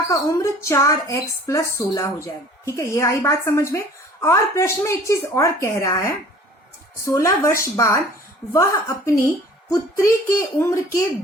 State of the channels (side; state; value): both; normal; correlation 0.49